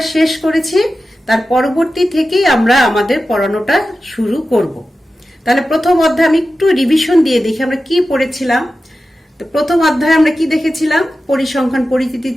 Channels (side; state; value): both; normal; correlation 0.93